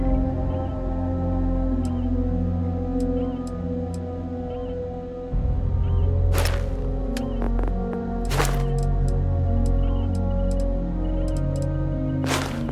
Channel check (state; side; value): identical; both; correlation 1.00